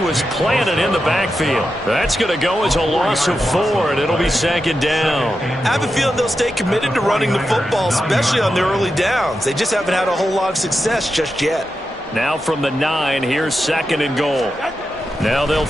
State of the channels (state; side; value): normal; both; correlation 0.89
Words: was planted in the backfield. That's going to go as a loss of 4, and it'll be 2nd down. I have a feeling they'll stay committed to running the football, especially on their early downs. They just haven't had a whole lot of success just yet. Now from the 9, here's 2nd and goal. Now they'll